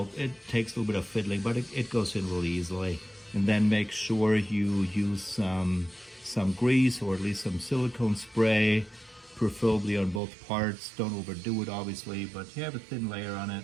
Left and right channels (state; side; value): drops out; left; at 10.2 s